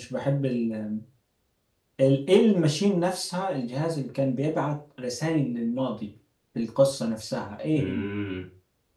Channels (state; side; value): identical; both; correlation 1.00